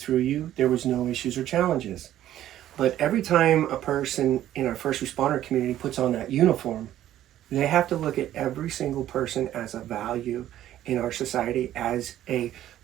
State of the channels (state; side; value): quieter; left; 12.6 dB